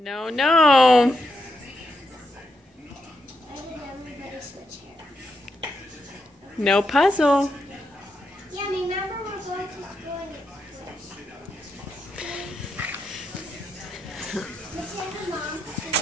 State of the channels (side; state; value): both; normal; correlation 0.83